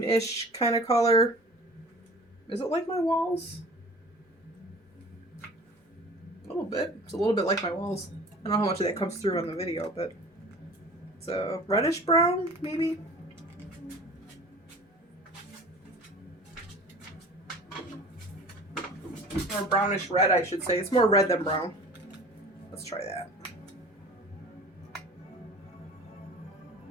kind of color. Is it like my walls? A little bit. It's a little bit like my walls. I don't know how much of that comes through on the video, but it's a reddish brown, maybe? Or brownish red, I should say. It's more red than brown. Let's try that.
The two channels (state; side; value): normal; both; correlation 0.43